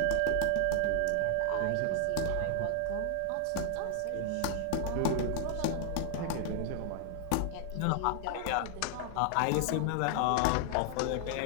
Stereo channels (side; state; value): both; different; correlation -0.01